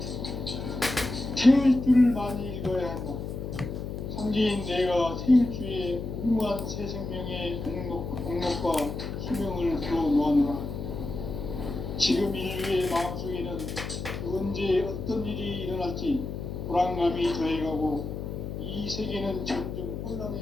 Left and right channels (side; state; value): left; noise; hum, 6 dB below the sound